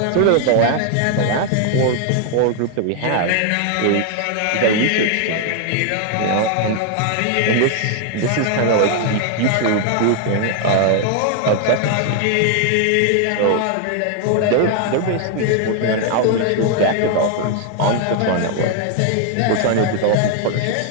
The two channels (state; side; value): different; both; correlation 0.00